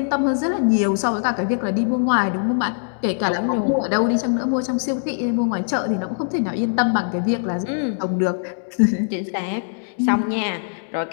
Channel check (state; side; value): silent; right; digital silence